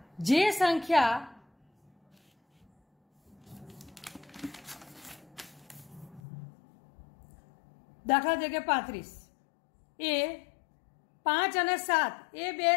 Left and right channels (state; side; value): drops out; right; at 6.2 s